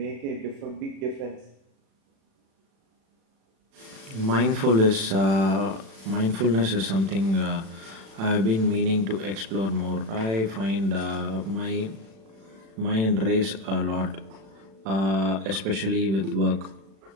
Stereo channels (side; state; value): left; late; 36 ms